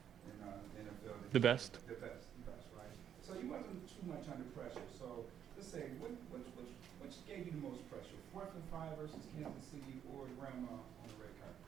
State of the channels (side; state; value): left; quieter; 9.2 dB